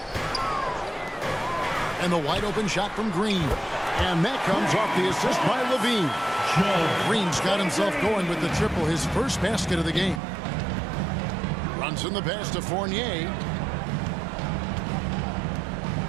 And the wide open shot from Green. And that comes off the assist by Levine. Green's got himself going with the triple, his first basket of the game. Runs in the pass to Fournier.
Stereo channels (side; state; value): left; drops out; at 10.2 s